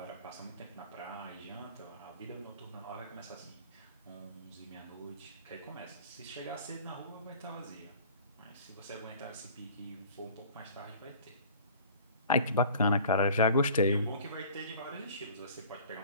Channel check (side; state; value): both; inverted; correlation -0.47